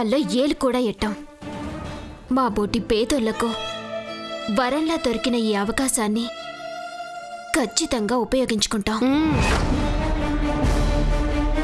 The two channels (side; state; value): both; identical; correlation 1.00